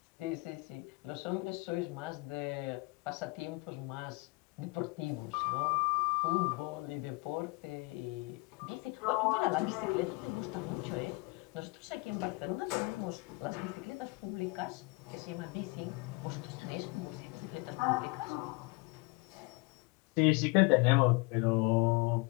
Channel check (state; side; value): quieter; right; 26.7 dB